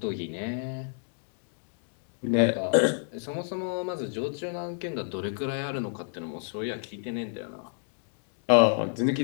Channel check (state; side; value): silent; right; digital silence